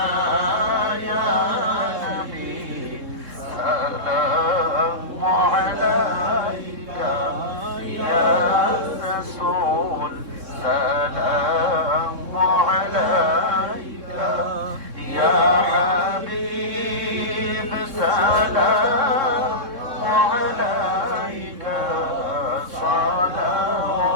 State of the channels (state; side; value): late; left; 3.7 ms